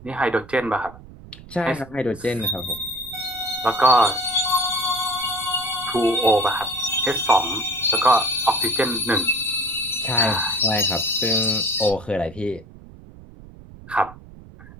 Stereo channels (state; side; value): noise; right; rumble, 19 dB below the sound